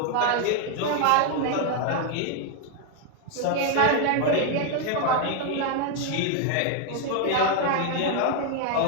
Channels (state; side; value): different; both; correlation 0.00